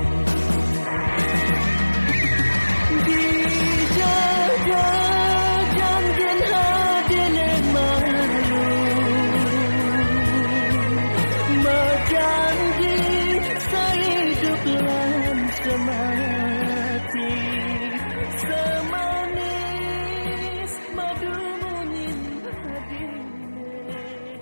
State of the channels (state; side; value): inverted; both; correlation -1.00